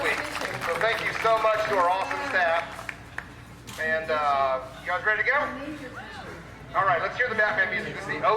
week. So thank you so much to our awesome staff. And you guys ready to go? All right, let's hear the Batman music. This is the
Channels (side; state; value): both; identical; correlation 1.00